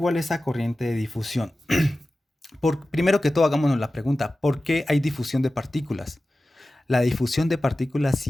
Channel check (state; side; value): normal; both; correlation 0.95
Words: esa corriente de difusión? Primero que todo, hagámonos la pregunta, ¿por qué hay difusión de partículas? La difusión de partículas